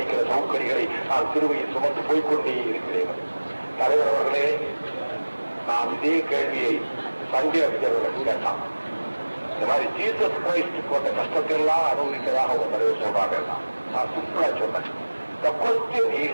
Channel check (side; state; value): both; inverted; correlation -1.00